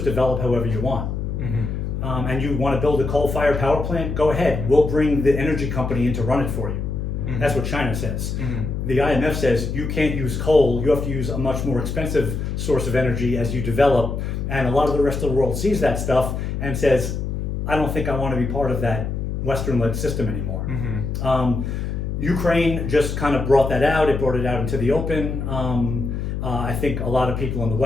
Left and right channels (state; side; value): noise; left; hum, 3 dB below the sound